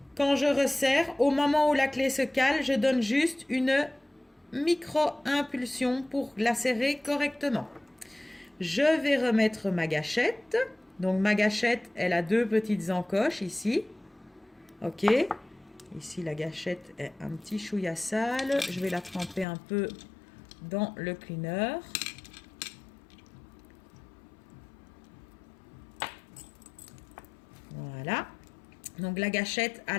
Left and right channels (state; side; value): drops out; right; at 19.5 s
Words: Quand je resserre, au moment où la clé se cale, je donne juste une micro-impulsion pour la serrer correctement. Je vais remettre ma gâchette. Donc ma gâchette, elle a deux petites encoches ici. OK. Ici, la gâchette est un petit chouïa sale. Je vais la tremper un peu dans le cleaner. Voilà. Donc la gâchette à